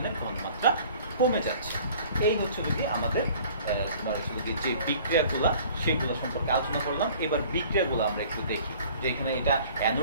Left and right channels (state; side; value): inverted; both; correlation -0.50